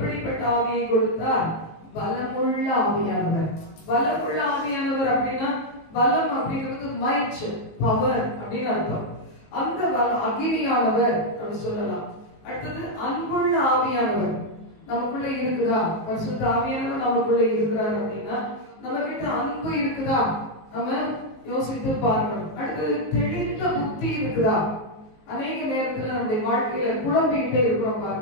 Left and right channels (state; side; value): late; right; 19 ms